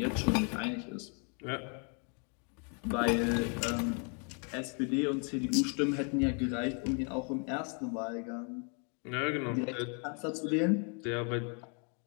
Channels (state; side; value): quieter; right; 38.6 dB